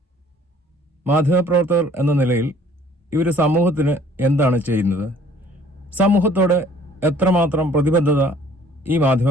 മാധ്യമപ്രവർത്തകർ എന്ന നിലയിൽ ഇവർ സമൂഹത്തിന് എന്താണ് ചെയ്യുന്നത്? സമൂഹത്തോട് എത്രമാത്രം പ്രതിബദ്ധത ഈ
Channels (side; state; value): both; normal; correlation 0.56